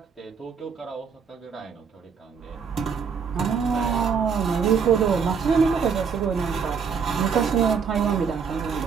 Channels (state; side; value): quieter; left; 6.2 dB